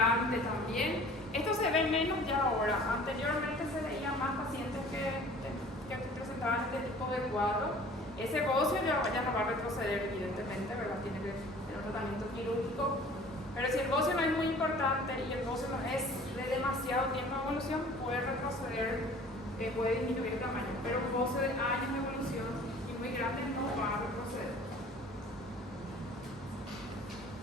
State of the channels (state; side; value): normal; both; correlation 0.48